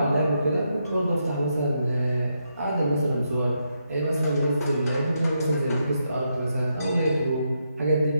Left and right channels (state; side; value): inverted; both; correlation -0.81